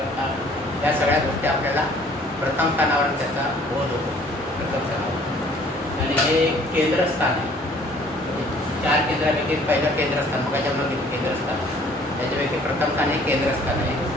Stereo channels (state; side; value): normal; both; correlation 0.56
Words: या सगळ्या गोष्टी आपल्याला प्रथम स्थानावर त्याचा बोध होतो, प्रथम स्थानावर. आणि हे केंद्रस्थान आहे. 4 केंद्रापैकी पहिलं केंद्रस्थान, मग त्याच्यामध्ये केंद्रस्थान, त्याच्यापैकी प्रथम स्थान हे केंद्रस्थान आहे.